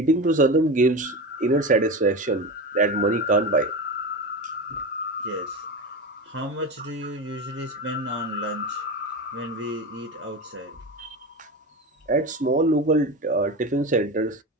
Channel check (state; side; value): normal; both; correlation 0.23